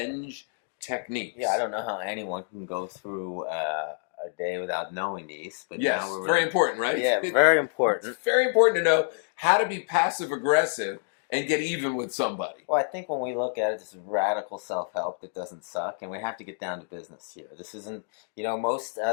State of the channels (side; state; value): right; silent; digital silence